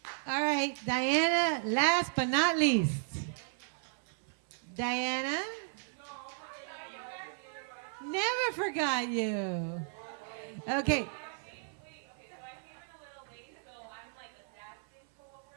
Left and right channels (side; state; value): left; silent; 55 dB below the other